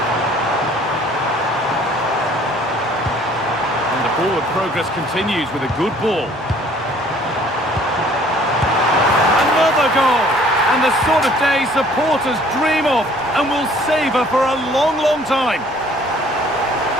Forward progress continues with a good ball. Another goal! And the sort of day supporters dream of and will savour for a long, long time.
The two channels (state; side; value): normal; both; correlation 0.56